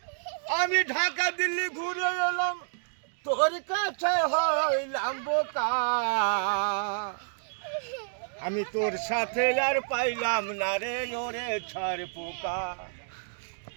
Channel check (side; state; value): left; silent; digital silence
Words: আমি ঢাকা দিল্লি ঘুরে এলাম, তোর কাছে হইলাম বোকা, আমি তোর সাথে আর পাইলাম না রে ওরে ছাড় পোকা,